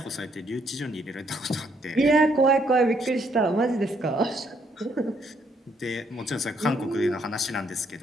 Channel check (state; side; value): normal; both; correlation 0.71